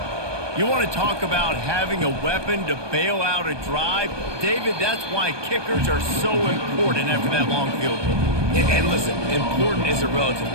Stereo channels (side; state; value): left; late; 1.2 ms